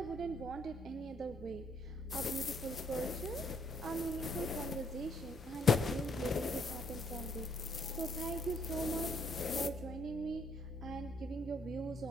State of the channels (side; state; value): both; normal; correlation 0.68